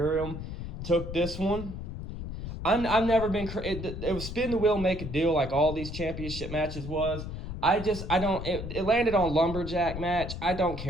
took this one. I've never been... It was spin the wheel, make a deal like all these championship matches was. It landed on lumberjack match. I don't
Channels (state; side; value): noise; left; rumble, 7 dB below the sound